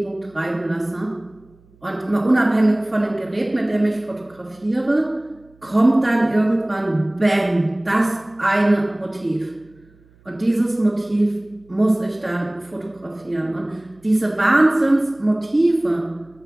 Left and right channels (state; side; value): noise; right; hum, 30 dB below the sound